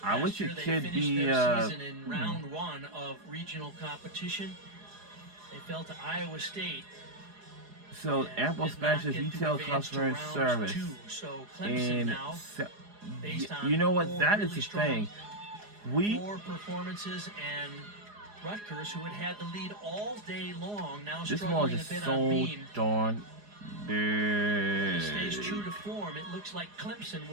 I Last wish year it they could finished be. their season in round 1 of regional competition. They fell to Iowa State. So, and Apple did not Specialist get to Retail advance to Customer round Service. 2. So Clemson And now, based on you know what? 4 That is really the strong thing. We. floor performances, and Rutgers, who had the lead all day long, now This one struggling a is bit on so beam. darn Stays true big. to form. It looks like Clemson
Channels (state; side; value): late; left; 4.8 ms